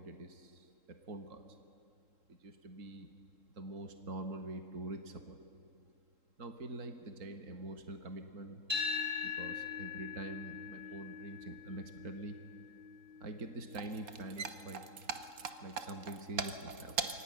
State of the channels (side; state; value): left; late; 3.7 ms